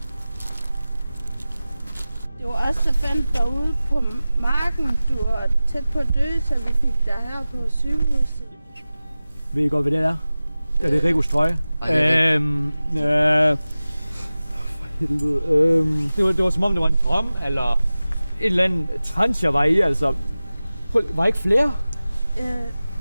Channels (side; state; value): both; inverted; correlation -0.97